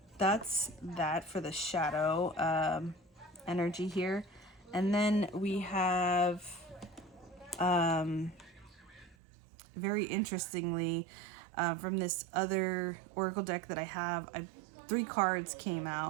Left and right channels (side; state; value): left; drops out; at 9.2 s